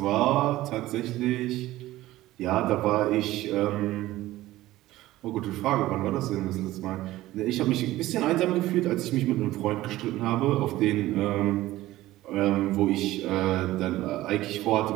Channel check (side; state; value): left; quieter; 16.3 dB